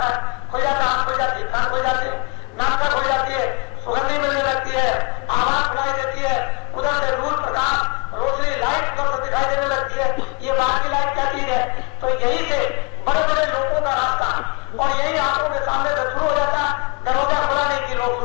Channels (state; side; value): quieter; right; 29.7 dB